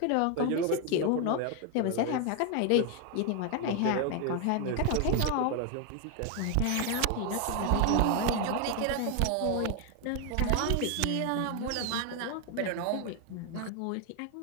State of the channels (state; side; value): different; both; correlation 0.01